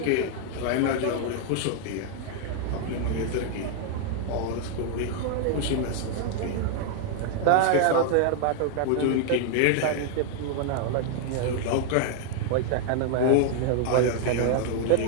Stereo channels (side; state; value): both; different; correlation 0.00